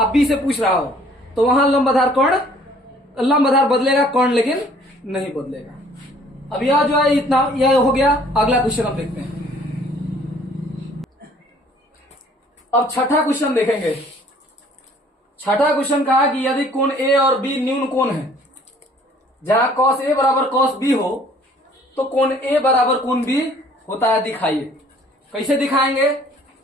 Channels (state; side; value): normal; both; correlation 0.56